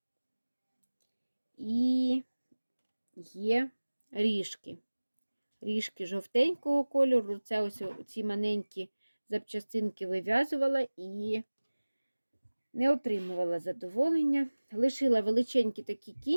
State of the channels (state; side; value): inverted; both; correlation -1.00